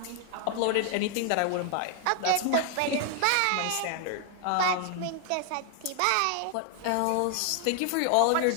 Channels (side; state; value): both; different; correlation 0.00